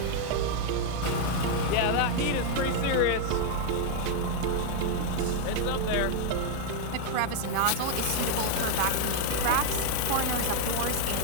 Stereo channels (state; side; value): different; both; correlation 0.00